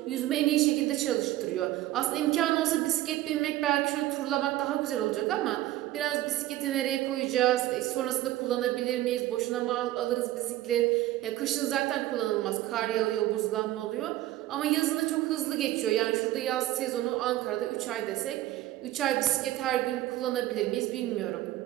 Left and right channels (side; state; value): left; quieter; 15.1 dB